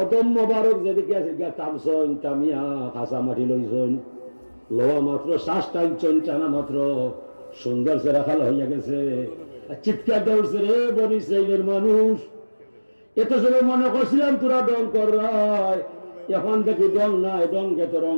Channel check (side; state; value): both; inverted; correlation -1.00